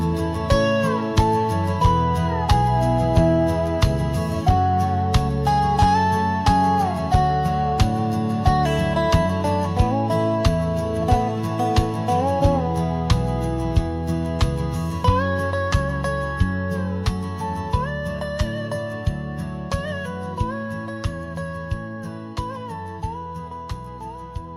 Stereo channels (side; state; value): both; identical; correlation 1.00